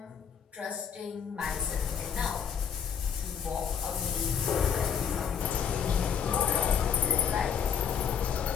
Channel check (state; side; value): quieter; right; 7.5 dB